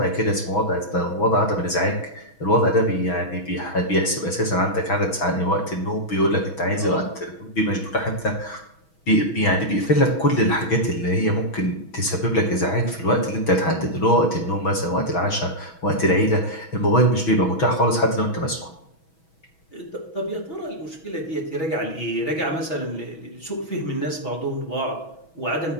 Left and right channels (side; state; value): right; late; 6.2 ms